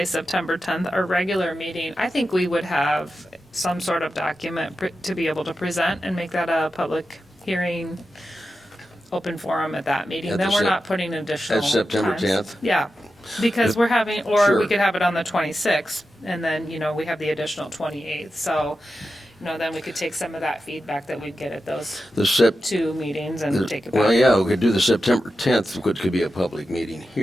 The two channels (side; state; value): both; normal; correlation 0.91